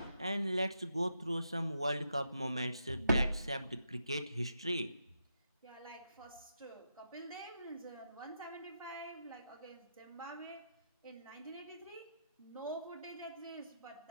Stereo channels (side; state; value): both; inverted; correlation -0.83